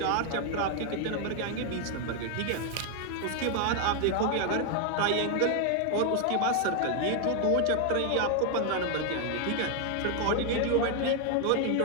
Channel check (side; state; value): both; different; correlation 0.00